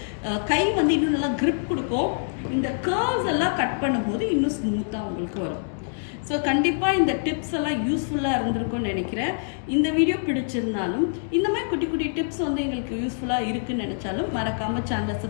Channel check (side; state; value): right; silent; digital silence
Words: கை வந்து இன்னும் நல்லா grip கொடுக்கும். இந்த கர்வ்ஸ் எல்லாம் கட் பண்ணும்போது இன்னும் ஸ்மூத்தாக உங்களுக்கு வரும். ஸோ கண்டிப்பாக இந்த டிப்ஸ் எல்லாம் யூஸ்ஃபுல்லாக இருந்திருக்கும்னு நினைக்கிறேன். இந்த வீடியோ பிடிச்சிருந்தாலும் இந்த மாதிரி குட்டி குட்டி டிப்ஸ் வந்து எங்களுக்கு யூஸ்ஃபுல்லாக இருக்குன்னு நினச்சாலும் மறக்காமல் சேனலை